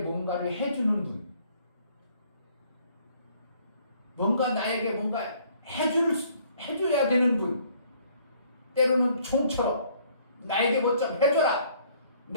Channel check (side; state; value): both; inverted; correlation -0.61